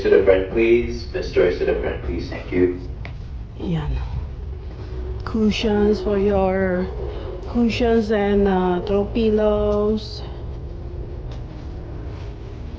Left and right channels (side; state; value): both; identical; correlation 1.00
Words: to the front, please. Miss Joyce to the front, please. Thank you. Yan. Cushions for your... Cushions and throw pillows.